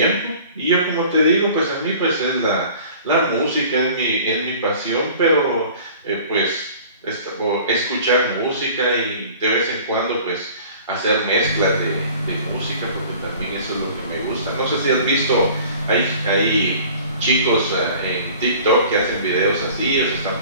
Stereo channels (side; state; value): both; inverted; correlation -0.46